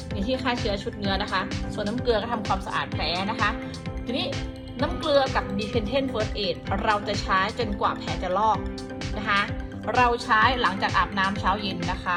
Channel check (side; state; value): both; identical; correlation 1.00